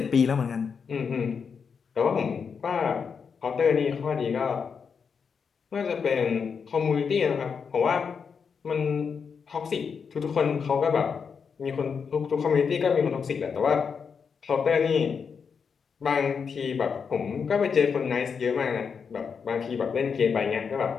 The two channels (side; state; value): right; quieter; 6.1 dB